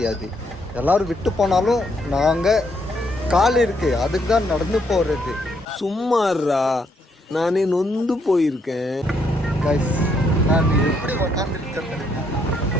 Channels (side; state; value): both; normal; correlation 0.74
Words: எல்லாரும் விட்டு போனாலும் நாங்க கால் இருக்கு, அதுக்கு தான் நடந்து போறது. சும்மாறா, நானே நொந்து போயிருக்கேன். கைஸ் நான் எப்படி உக்காந்துருக்கேன்